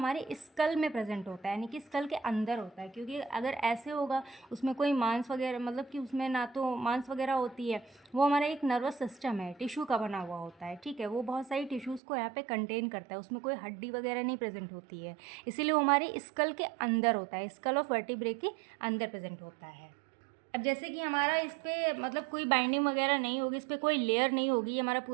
स्कल में प्रेजेंट होता है, यानी कि स्कल के अंदर होता है। क्योंकि अगर ऐसे होगा, उसमें कोई मांस वगैरह, मतलब कि उसमें ना तो मांस वगैरह होती है, वो हमारा एक नर्वस सिस्टम है, टिश्यू का बना हुआ होता है। ठीक है, वो बहुत सारी टिश्यूज़ को यहाँ पे कंटेन करता है, उसमें कोई हड्डी वगैरह नहीं प्रेजेंट होती है, इसीलिए वो हमारे स्कल के अंदर होता है, स्कल ऑफ वर्टिब्रे के अंदर प्रेजेंट होता है। अब जैसे कि हमारा इस पर मतलब कोई बाइंडिंग वगैरह नहीं होगी, इस पर कोई लेयर नहीं होगी, ये हमारा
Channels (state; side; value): drops out; left; at 12.0 s